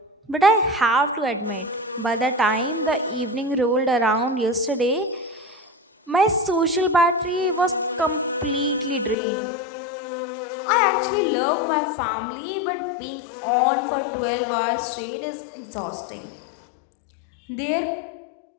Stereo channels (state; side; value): drops out; right; at 9.2 s